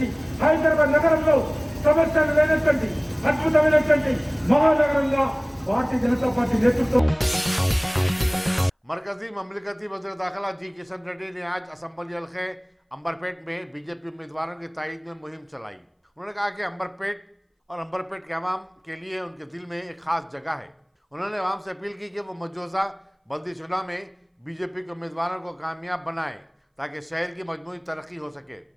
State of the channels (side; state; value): both; identical; correlation 1.00